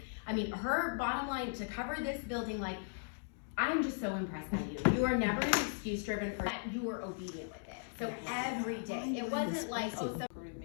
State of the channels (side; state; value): right; silent; digital silence